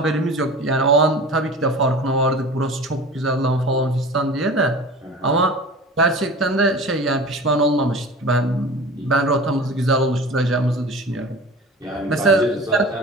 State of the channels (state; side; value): normal; both; correlation 0.38